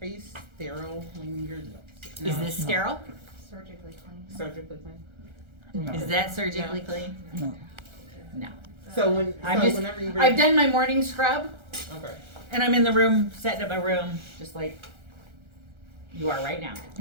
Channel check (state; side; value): late; left; 1.3 ms